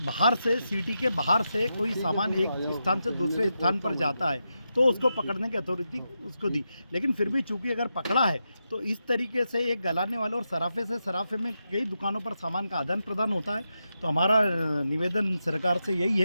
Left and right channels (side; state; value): both; inverted; correlation -0.87